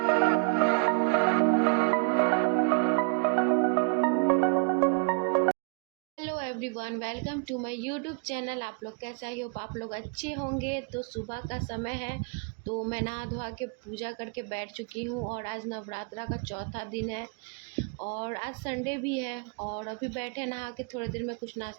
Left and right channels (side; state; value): left; quieter; 39.1 dB